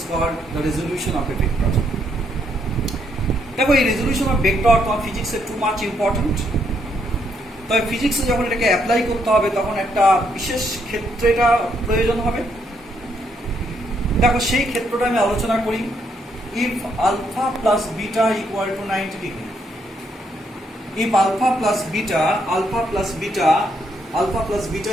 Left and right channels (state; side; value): normal; both; correlation 0.74